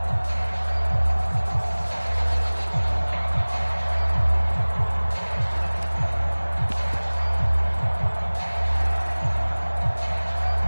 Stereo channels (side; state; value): both; inverted; correlation -1.00